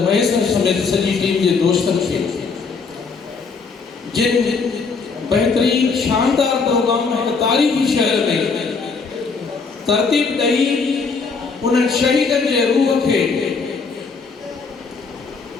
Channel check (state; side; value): quieter; right; 4.8 dB